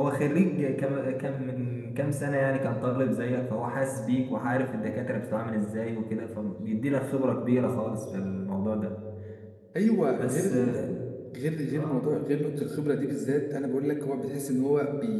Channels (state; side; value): identical; both; correlation 1.00